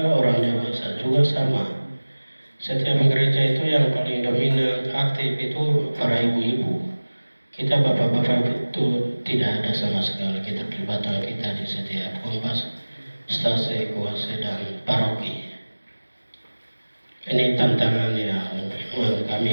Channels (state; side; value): inverted; both; correlation -1.00